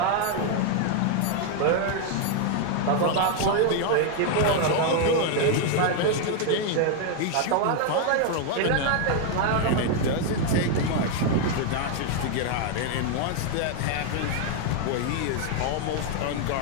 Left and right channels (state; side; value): different; both; correlation 0.00